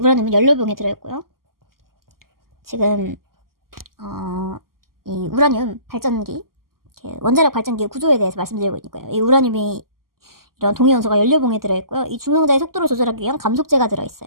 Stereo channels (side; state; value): left; late; 0.92 ms